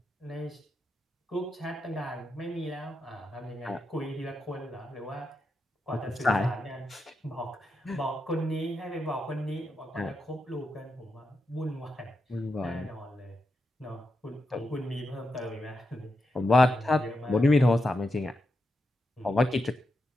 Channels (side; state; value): both; normal; correlation 0.86